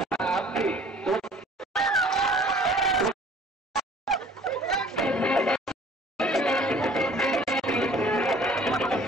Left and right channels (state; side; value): normal; both; correlation 0.51